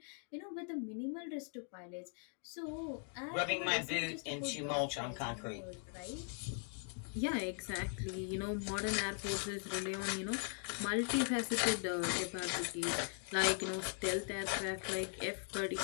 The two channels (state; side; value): silent; right; 51 dB below the other